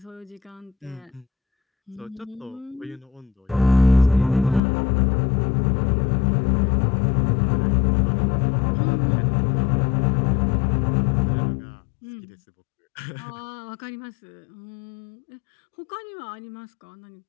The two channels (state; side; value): drops out; right; at 4.6 s